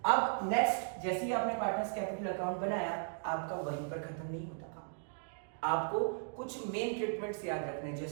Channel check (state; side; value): silent; left; digital silence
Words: अब नेक्स्ट, जैसे ही आपने पार्टनर्स कैपिटल अकाउंट बनाया, आपका वहीं पर खत्म नहीं होता काम। आपको कुछ मेन ट्रीटमेंट्स याद रखने,